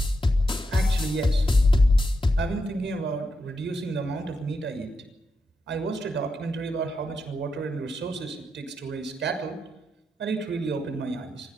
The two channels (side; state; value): both; normal; correlation 0.85